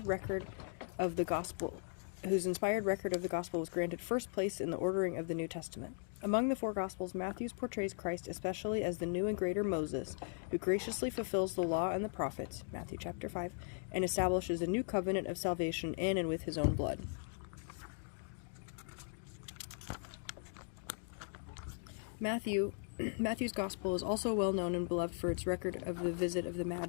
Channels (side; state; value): right; silent; 52 dB below the other